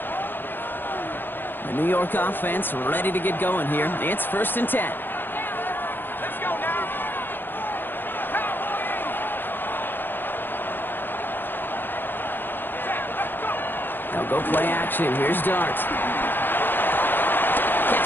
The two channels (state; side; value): late; right; 0.096 ms